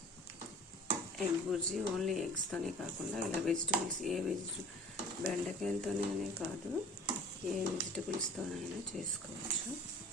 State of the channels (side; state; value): both; normal; correlation 0.45